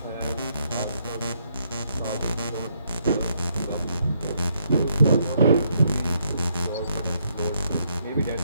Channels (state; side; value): inverted; both; correlation -0.74